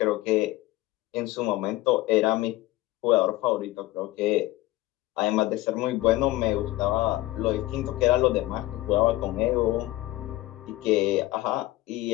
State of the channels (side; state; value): right; quieter; 17.6 dB